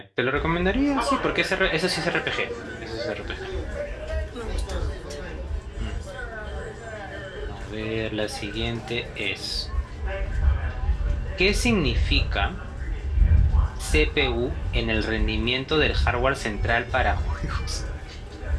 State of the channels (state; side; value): identical; both; correlation 1.00